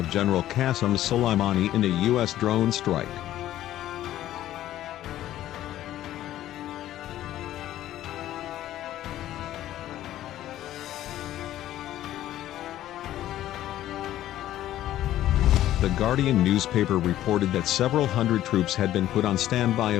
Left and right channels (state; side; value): quieter; right; 13.3 dB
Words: General Qasem Soleimani in a U.S. drone strike. The Guardian newspaper reported that several hundred troops had been put on standby